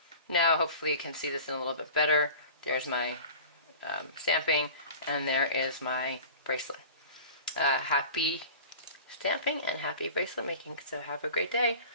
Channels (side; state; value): both; inverted; correlation -0.39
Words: Now hopefully you can see this in a little bit better. There's my stamping, and there is my bracelet. Happy stamping and happy bracelet making. So have a great day.